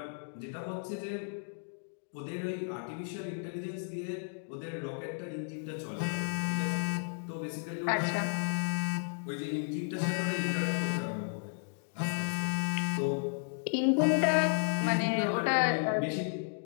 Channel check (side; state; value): right; silent; digital silence